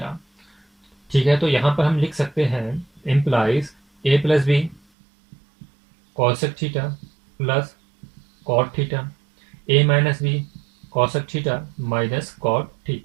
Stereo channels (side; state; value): left; drops out; at 4.8 s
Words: ठीक है, तो यहाँ पर हम लिख सकते हैं implies A plus B cosec theta plus cot theta, A minus B cosec theta minus cot